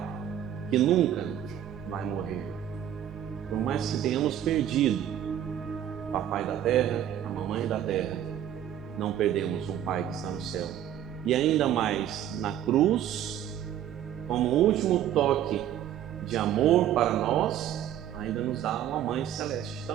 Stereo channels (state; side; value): quieter; left; 10.9 dB